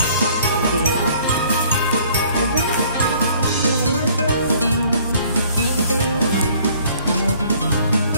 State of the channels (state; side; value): inverted; both; correlation -0.57